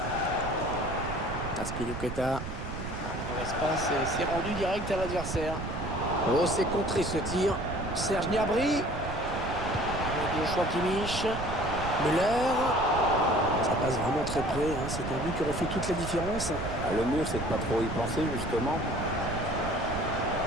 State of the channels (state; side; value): noise; right; rumble, 7 dB below the sound